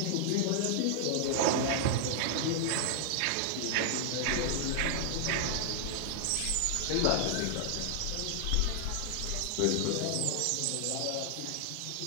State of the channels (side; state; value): both; different; correlation 0.00